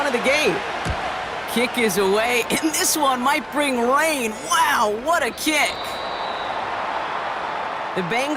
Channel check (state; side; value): identical; both; correlation 1.00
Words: of the game. Kick is away, and this one might bring rain. Wow, what a kick. The